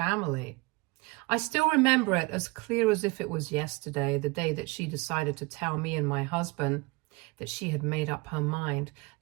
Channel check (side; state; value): left; quieter; 25.2 dB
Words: I still remember it as clear as if it was yesterday, the day that she decided to tell me and my husband that she had made up her mind,